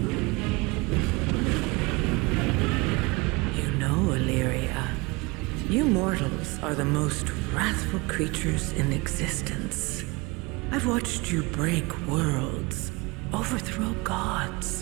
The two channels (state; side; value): quieter; left; 25.4 dB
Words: You mortals are the most wrathful creatures in existence. I've watched you break worlds, overthrow